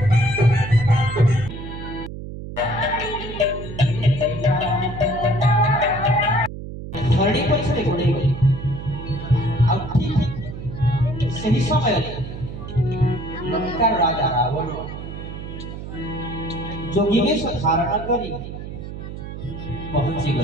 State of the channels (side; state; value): right; noise; hum, 9 dB below the sound